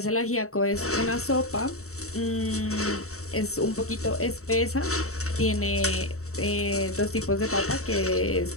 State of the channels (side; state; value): right; late; 0.64 ms